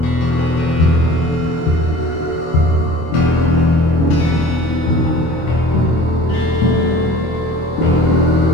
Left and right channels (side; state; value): right; late; 25 ms